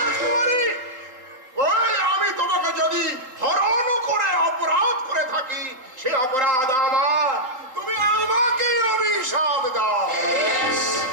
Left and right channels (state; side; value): late; left; 3.8 ms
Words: ওই আমি তোমাকে যদি হরণ করে অপরাধ করে থাকি, সে অপরাধ আমার, তুমি আমাকে অভিশাপ দাও।